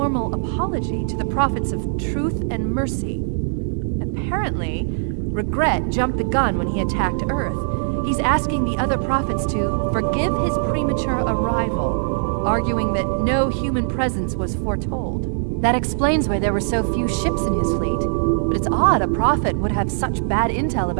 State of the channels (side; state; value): left; silent; 65 dB below the other